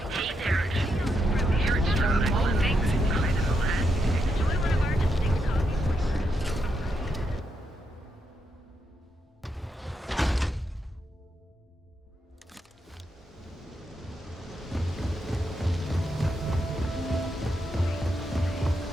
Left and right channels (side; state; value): both; normal; correlation 0.82